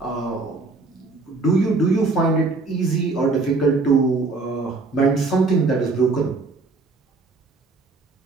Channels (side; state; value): left; quieter; 3.7 dB